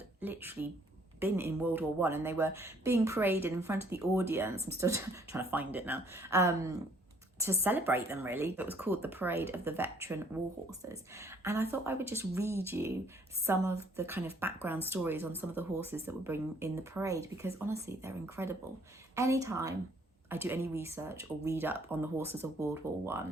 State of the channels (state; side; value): normal; both; correlation 0.62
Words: literally been in World War I, and they were being paraded in front of the audience. I'm still trying to find it now. To celebrate them, really. It was called the Parade of the Veteran War Horses. And I thought I would just read you some of the kind of background stories on some of the horses that were bringing in the parade, because honestly, they're incredible. Anytime I do any research or read up on the horses of World War